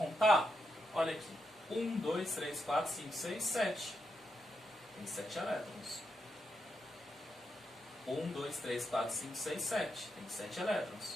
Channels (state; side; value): normal; both; correlation 0.84